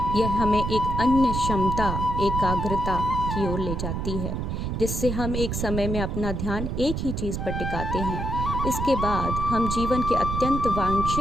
यह हमें एक अन्य क्षमता, एकाग्रता की ओर ले जाती है, जिससे हम एक समय में अपना ध्यान एक ही चीज़ पर टिकाते हैं। इसके बाद हम जीवन के अत्यंत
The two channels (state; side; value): noise; right; rumble, 3 dB below the sound